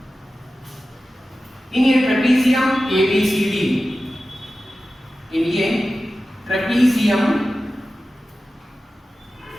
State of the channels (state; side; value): normal; both; correlation 0.94